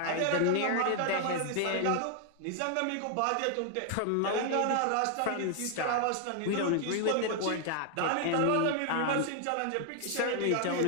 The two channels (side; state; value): both; different; correlation 0.00